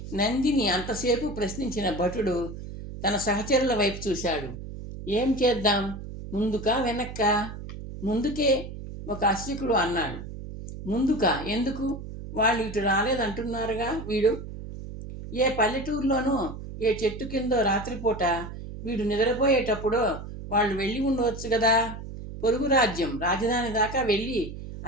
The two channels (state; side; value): noise; right; hum, 10 dB below the sound